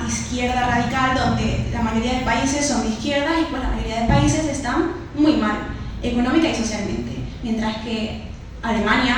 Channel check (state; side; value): identical; both; correlation 1.00